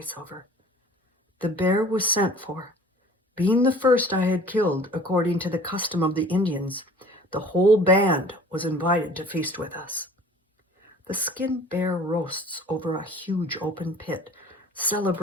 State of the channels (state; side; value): normal; both; correlation 0.48